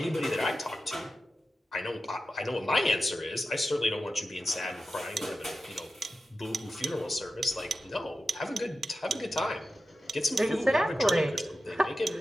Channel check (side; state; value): both; normal; correlation 0.92